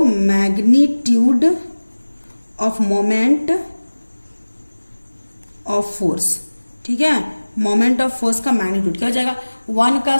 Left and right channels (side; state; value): both; inverted; correlation -1.00